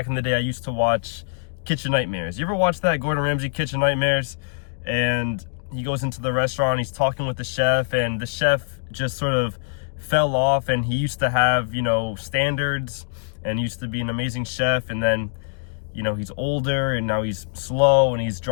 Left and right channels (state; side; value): silent; right; digital silence